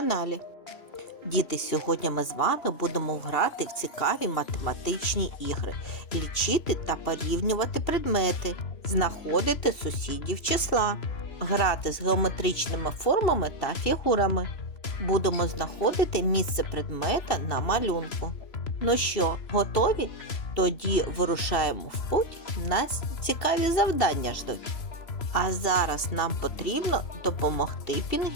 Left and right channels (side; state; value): right; late; 2.7 ms